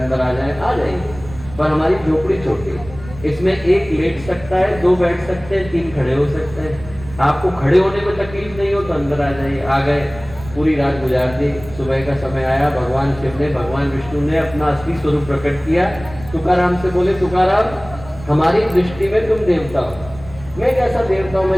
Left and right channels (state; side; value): noise; right; rumble, 16 dB below the sound